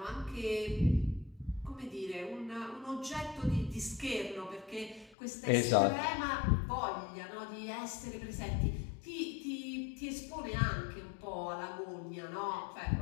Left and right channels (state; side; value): drops out; right; at 5.2 s